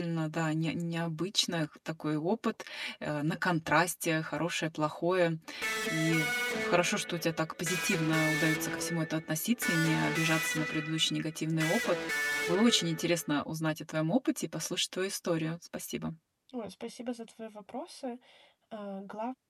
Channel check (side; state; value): both; identical; correlation 1.00